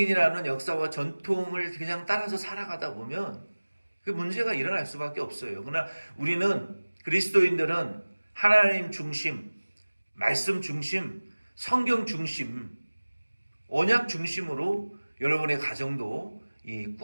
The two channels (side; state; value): both; inverted; correlation -1.00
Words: 역사와 전통을 그냥 따라서 살아가다 보면 그 문제가 일어날 수밖에 없어요. 그러나 우리는, 그리스도인들은 하나님 중심, 말씀 중심, 성경 중심, 언약 중심으로 여러분의 가정도